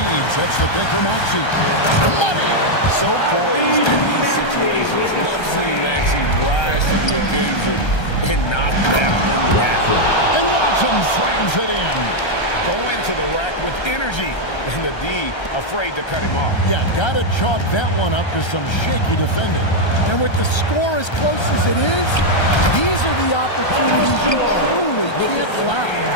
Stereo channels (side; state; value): right; late; 1.3 ms